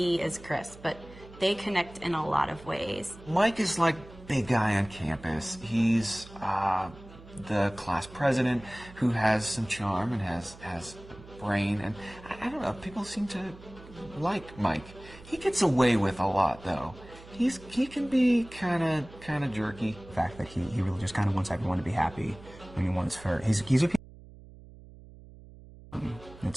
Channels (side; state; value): right; noise; hum, 19 dB below the sound